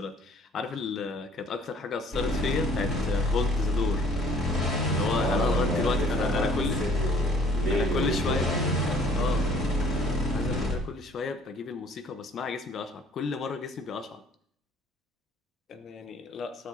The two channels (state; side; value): normal; both; correlation 0.56